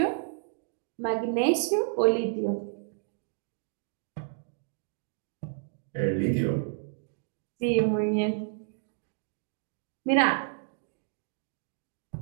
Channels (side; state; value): left; silent; digital silence